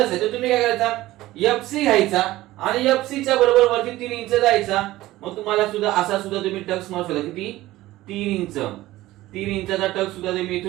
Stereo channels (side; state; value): left; quieter; 16.8 dB